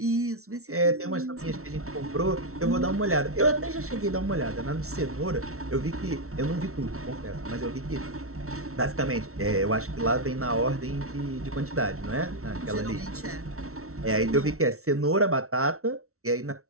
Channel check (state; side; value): late; left; 0.63 ms